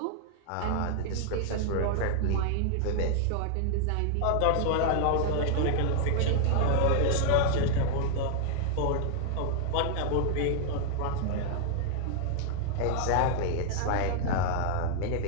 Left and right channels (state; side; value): different; both; correlation 0.00